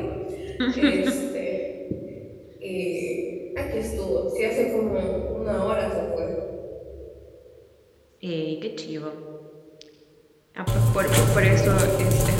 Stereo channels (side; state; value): both; identical; correlation 1.00